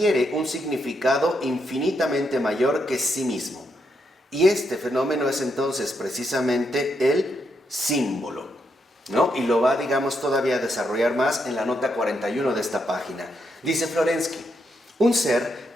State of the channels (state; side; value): normal; both; correlation 0.80